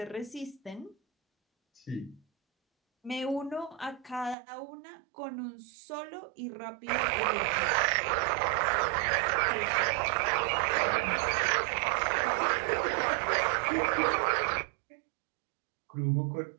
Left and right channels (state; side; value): drops out; left; at 4.4 s